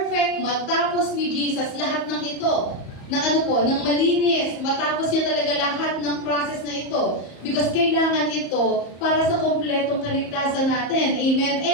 matapos ni Jesus lahat ng ito. Ng malinis, matapos niya talaga lahat ng process na ito. Because kailangan ito para sa kompletong kaligtasan natin. Amen?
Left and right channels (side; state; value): right; late; 34 ms